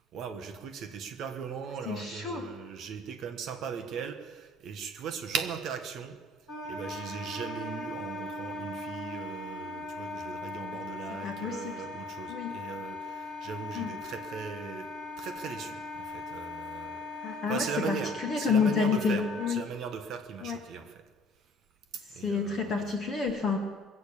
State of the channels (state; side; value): normal; both; correlation 0.54